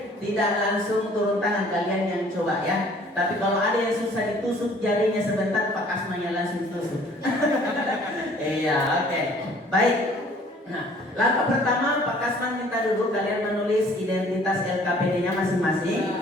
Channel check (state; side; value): normal; both; correlation 0.55